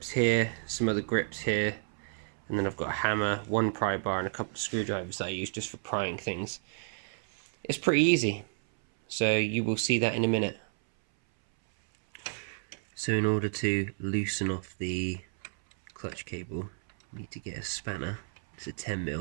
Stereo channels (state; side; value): silent; left; 57 dB below the other